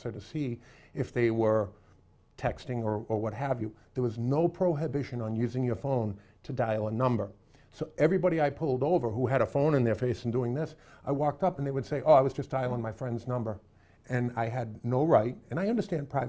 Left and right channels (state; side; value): identical; both; correlation 1.00